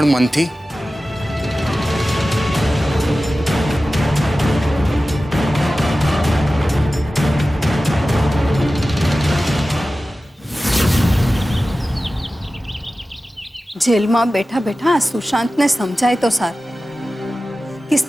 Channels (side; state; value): both; normal; correlation 0.95